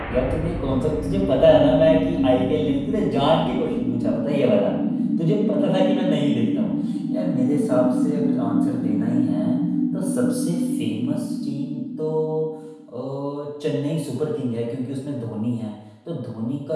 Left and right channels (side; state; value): both; identical; correlation 1.00